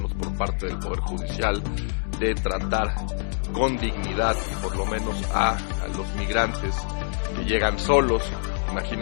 por parte del Poder Judicial, de tratar con dignidad, por lo menos a los migrantes que llegan solos.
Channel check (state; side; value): silent; right; digital silence